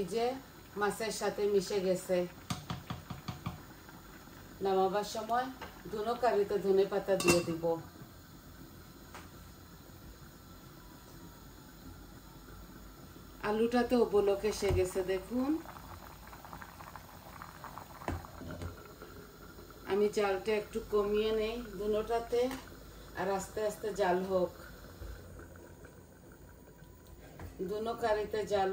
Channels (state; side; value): identical; both; correlation 1.00